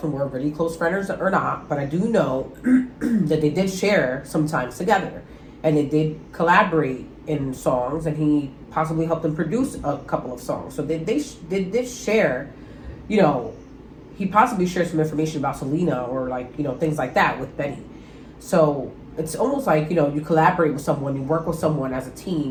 were really close friends or not. But I do know that they did share sometimes together. And they did collaborate in songs. And he possibly helped them produce a couple of songs. So they did share, you know, he possibly shared some information about Selena or like, you know, things like that with Benny. So it's almost like, you know, you collaborate with someone, you work with someone as a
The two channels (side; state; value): both; identical; correlation 1.00